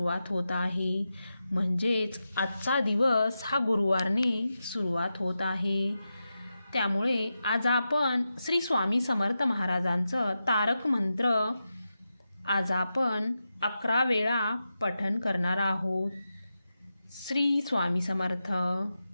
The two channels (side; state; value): both; inverted; correlation -0.90